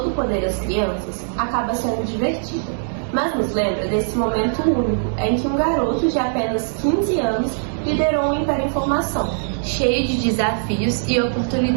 poder às crianças" acaba sendo divertida, mas nos lembra desse momento único em que um garoto de apenas 15 anos liderou um império em formação, cheio de desafios e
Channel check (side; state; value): left; silent; digital silence